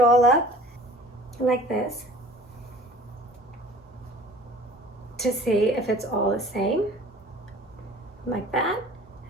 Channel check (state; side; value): normal; both; correlation 0.47